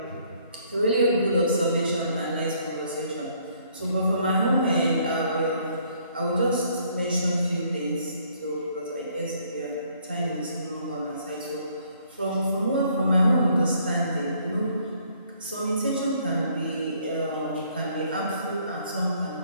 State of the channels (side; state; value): both; inverted; correlation -0.64